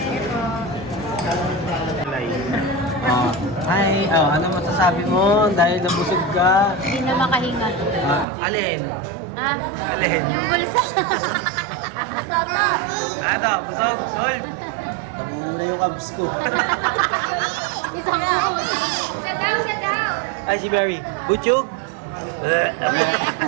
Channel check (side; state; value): left; drops out; at 8.2 s